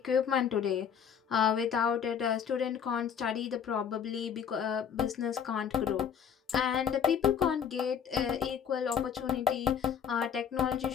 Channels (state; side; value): quieter; right; 7.8 dB